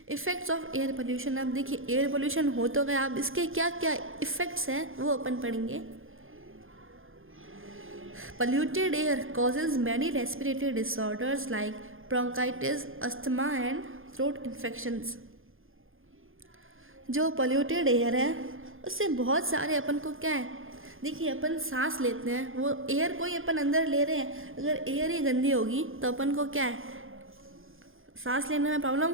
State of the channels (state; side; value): late; left; 0.59 ms